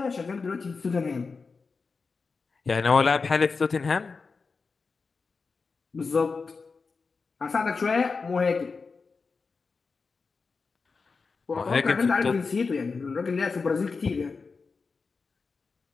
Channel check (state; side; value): quieter; right; 4.6 dB